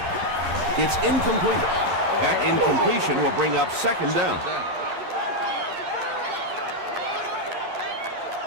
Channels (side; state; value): left; late; 11 ms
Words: It's incomplete. That incompletion will bring up second down.